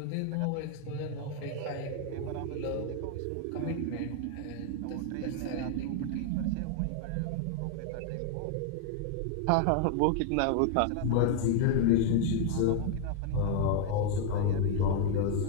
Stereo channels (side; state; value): both; different; correlation 0.00